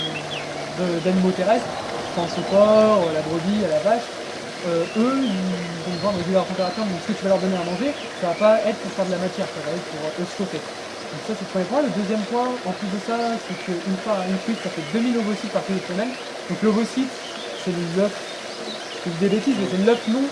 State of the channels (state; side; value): identical; both; correlation 1.00